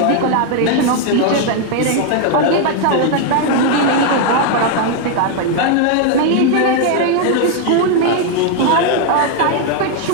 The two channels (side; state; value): both; different; correlation 0.00